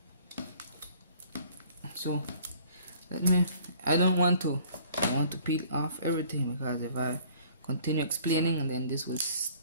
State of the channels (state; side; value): inverted; both; correlation -0.55